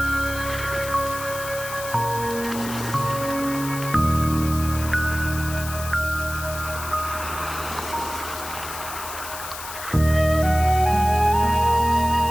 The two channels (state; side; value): noise; left; hiss, 10 dB below the sound